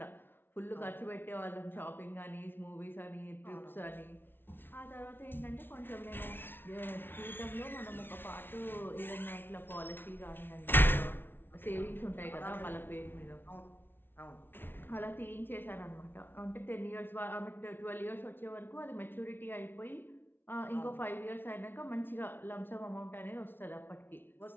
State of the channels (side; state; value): right; late; 0.10 ms